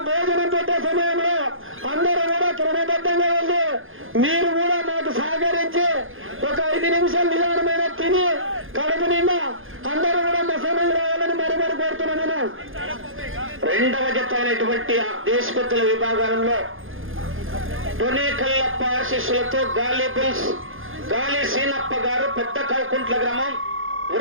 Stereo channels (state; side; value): late; left; 0.59 ms